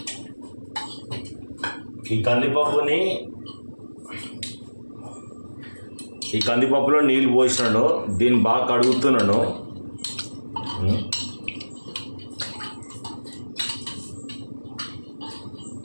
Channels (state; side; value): inverted; both; correlation -1.00